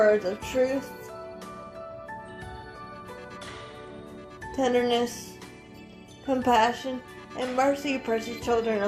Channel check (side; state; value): both; identical; correlation 1.00